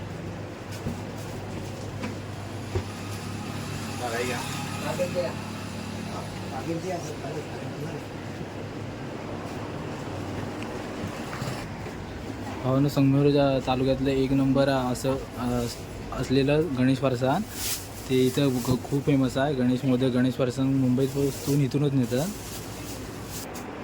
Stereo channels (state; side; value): identical; both; correlation 1.00